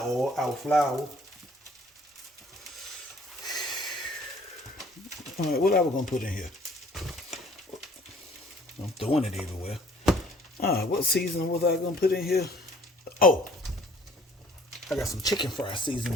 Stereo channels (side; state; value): both; normal; correlation 0.56